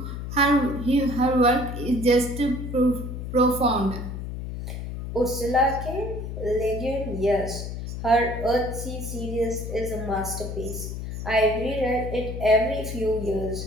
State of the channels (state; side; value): noise; left; hum, 6 dB below the sound